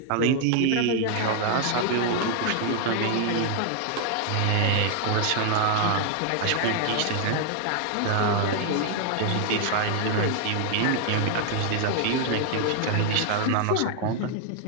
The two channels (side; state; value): both; different; correlation 0.00